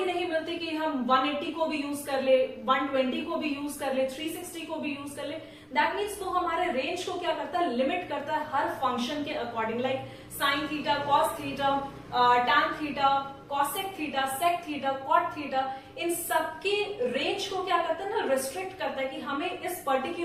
नहीं मिलती कि हम 180 को भी यूज कर ले, 120 को भी यूज कर ले, 360 को भी यूज कर ले। दैट मीन्स वो हमारे रेंज को क्या करता है, लिमिट करता है हर फंक्शन के according. Like sine theta, cos theta, tan theta, cosec theta, sec theta, cot theta, इन सबके रेंज को क्या करता है ना, रिस्ट्रिक्ट करता है कि हमें इस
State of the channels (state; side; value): identical; both; correlation 1.00